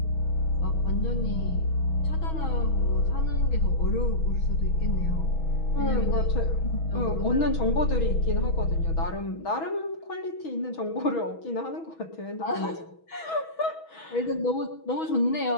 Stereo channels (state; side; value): late; right; 6.2 ms